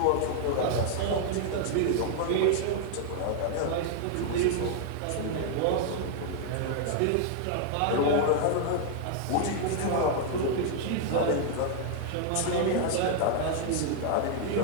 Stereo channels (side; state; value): both; different; correlation 0.00